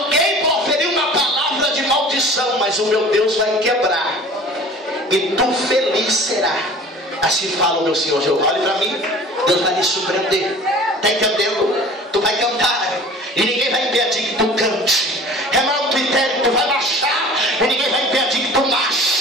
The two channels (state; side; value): normal; both; correlation 0.44